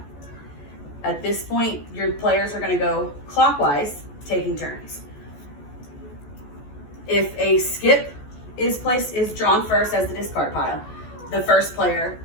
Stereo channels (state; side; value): late; right; 14 ms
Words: At this point, your players are going to go clockwise, taking turns. If a skip is drawn first as the discard pile, the first player